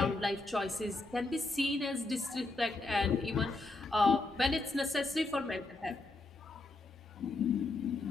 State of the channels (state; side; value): quieter; right; 3.1 dB